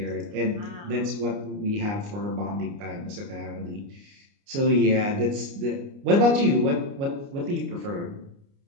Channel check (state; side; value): late; left; 29 ms